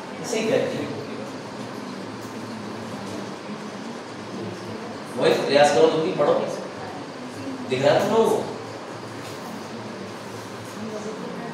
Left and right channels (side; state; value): both; identical; correlation 1.00